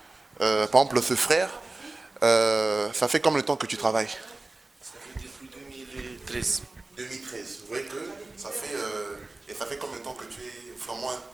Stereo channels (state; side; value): quieter; left; 3.1 dB